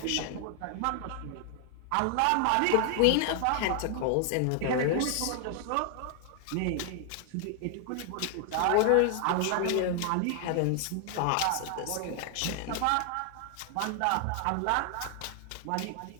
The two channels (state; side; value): different; both; correlation 0.00